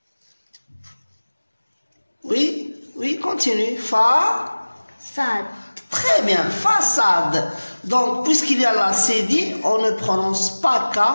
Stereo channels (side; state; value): both; inverted; correlation -1.00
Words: Oui, continue. Fa. Sad. Très bien, façade. Donc, puisqu'il y a la CD, on ne prononce pas K,